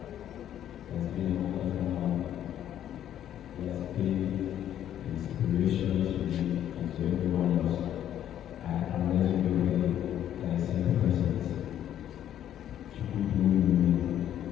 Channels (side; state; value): right; quieter; 10.9 dB